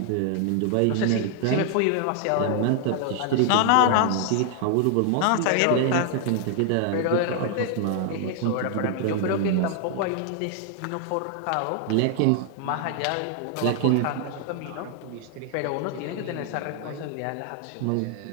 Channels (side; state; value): both; different; correlation 0.00